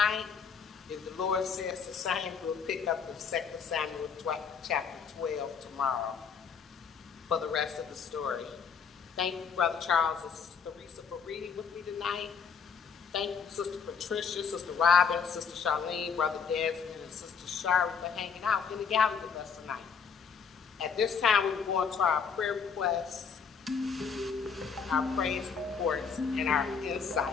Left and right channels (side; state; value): right; quieter; 6.2 dB